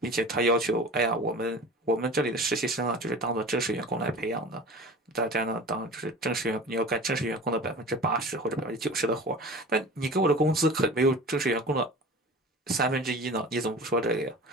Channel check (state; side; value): normal; both; correlation 0.38